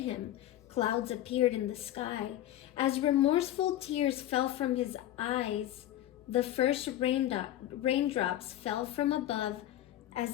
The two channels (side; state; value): right; quieter; 13.0 dB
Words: clouds appeared in the sky. As remorseful tears fell from his eyes, the first raindrops fell from above